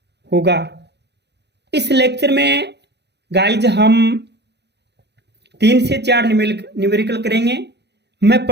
होगा। इस लेक्चर में गाइज हम 3 से 4 न्यूमेरिकल करेंगे। मैं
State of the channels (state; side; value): late; left; 0.49 ms